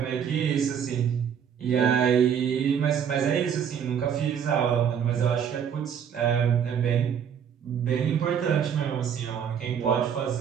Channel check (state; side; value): quieter; left; 8.1 dB